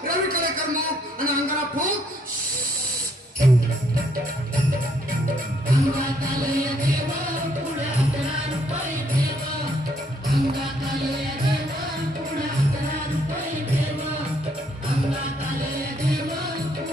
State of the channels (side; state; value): both; normal; correlation 0.69